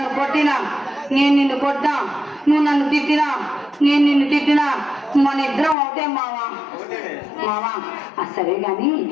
కొట్టినా నేను నిన్ను కొట్టా నువ్వు నన్ను తిట్టినా నేను నిన్ను తిట్టినా మన ఇద్దరం ఒకటే మావా మావా సరే గాని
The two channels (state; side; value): drops out; right; at 5.8 s